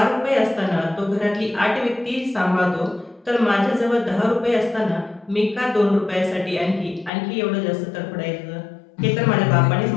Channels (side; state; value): right; drops out; at 7.1 s